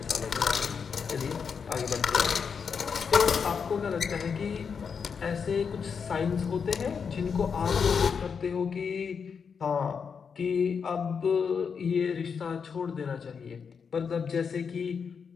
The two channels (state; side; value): quieter; right; 6.2 dB